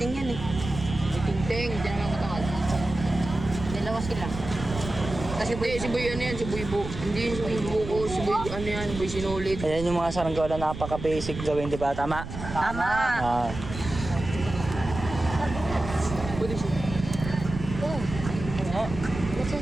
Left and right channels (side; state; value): right; noise; rumble, 9 dB below the sound